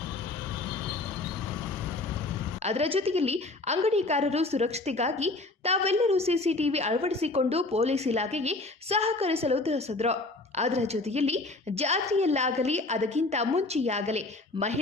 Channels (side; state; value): right; quieter; 3.1 dB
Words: ಅದರ ಜೊತೆಯಲ್ಲಿ ಅಂಗಡಿಕಾರರು ಸುರಕ್ಷತೆಗಾಗಿ ತಾವೆಲ್ಲರೂ CCTV ಅಳವಡಿಸಿಕೊಂಡು ಪೊಲೀಸ್ ಇಲಾಖೆಗೆ ಸಹಕರಿಸಲು ತಿಳಿಸಿದರು. ಅದರ ಜೊತೆಯಲ್ಲಿ ಜಾತ್ರೆಯಲ್ಲಾಗಲಿ ಅದಕ್ಕಿಂತ ಮುಂಚೆಯಾಗಲಿ